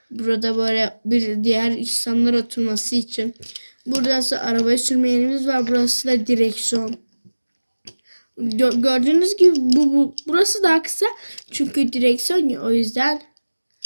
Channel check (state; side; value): inverted; both; correlation -1.00